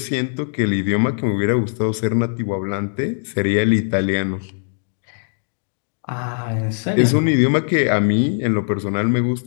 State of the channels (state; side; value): silent; right; digital silence